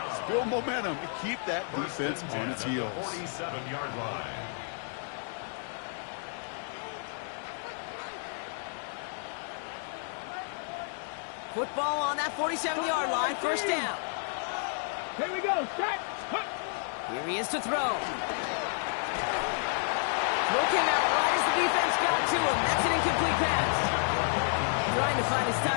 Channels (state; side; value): silent; right; 57 dB below the other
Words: Build momentum to keep that defense on its heels. 47-yard line. Football on that 47-yard line, first down. Here we go, set. Here he is to throw. Throw came out right as the defense got to him. That's an incomplete pass. Trying to find his